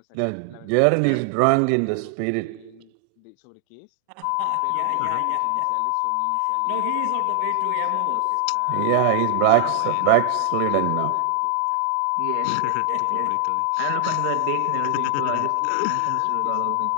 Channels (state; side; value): different; both; correlation 0.00